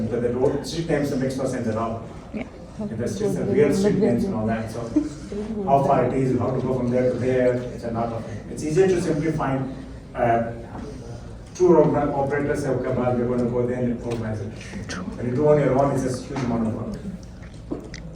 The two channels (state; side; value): identical; both; correlation 1.00